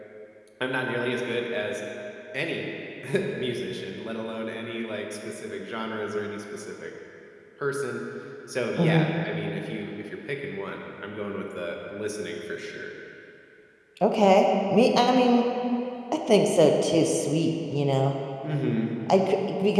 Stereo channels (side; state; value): both; identical; correlation 1.00